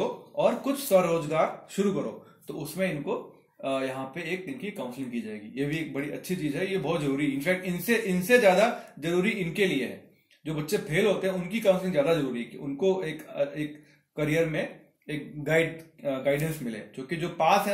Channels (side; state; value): both; identical; correlation 1.00